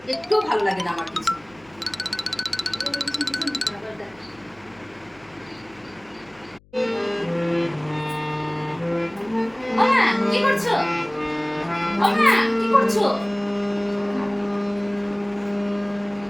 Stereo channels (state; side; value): noise; left; hum, 28 dB below the sound